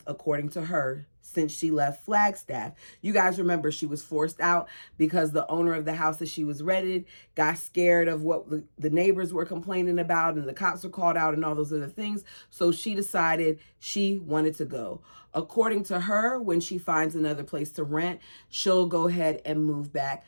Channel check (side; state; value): both; inverted; correlation -1.00